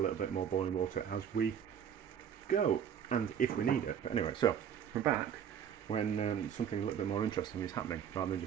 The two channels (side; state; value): left; quieter; 8.6 dB